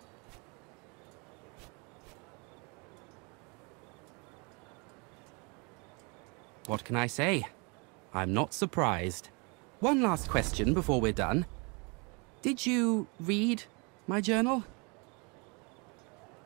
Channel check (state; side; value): quieter; left; 31.0 dB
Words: What can I say? I'm not surprised. One last question before we're done. Did you read my journal?